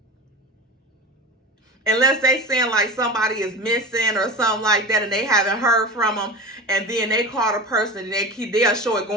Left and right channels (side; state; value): both; normal; correlation 0.29